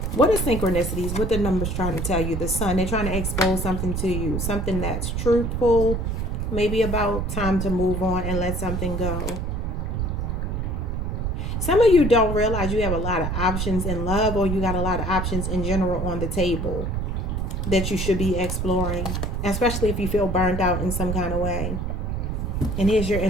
What are synchronicities? What the numbers trying to tell you? The sun, they're trying to expose something to you. Something that's truthful. Maybe about time to move on and let something go. Some of you don't realize you have a lot of options in love, or you got a lot of options in general on the table that you should be exploring, especially if you feel burned out in some kind of way. And here's your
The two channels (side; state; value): right; noise; rumble, 1 dB below the sound